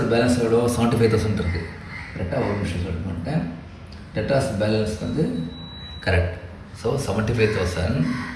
பேலன்ஸ் எவ்வளோ? 75,000 இருக்குது. கரெக்டாக ஒரு நிமிஷம் சொல்ல மாட்டேன். டெட்டார்ஸ் பேலன்ஸ் வந்து correct. So 75,000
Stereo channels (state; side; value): identical; both; correlation 1.00